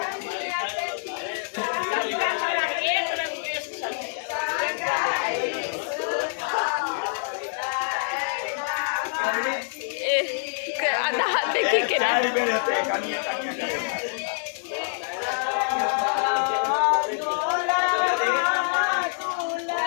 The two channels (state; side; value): silent; right; digital silence